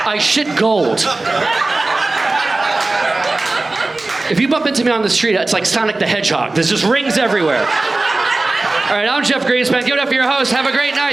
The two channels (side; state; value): left; quieter; 3.1 dB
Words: I shit gold. If you bump into me on the street, it's like Sonic the Hedgehog. There's just rings everywhere. All right, I'm Jeff Greenspan. Give it up for your host. Have a great